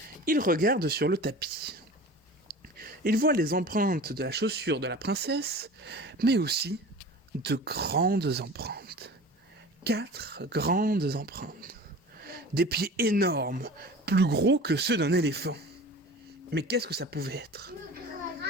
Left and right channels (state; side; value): normal; both; correlation 0.38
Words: il regarde sur le tapis. Il voit les empreintes de la chaussure de la princesse, mais aussi de grandes empreintes. 4 grandes empreintes. Des pieds énormes, plus gros que ceux d'un éléphant. Mais qu'est-ce que ça pouvait être